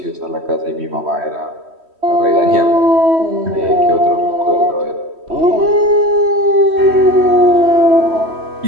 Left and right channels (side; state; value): left; late; 3.1 ms